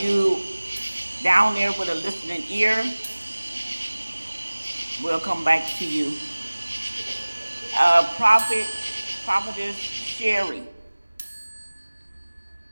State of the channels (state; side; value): inverted; both; correlation -1.00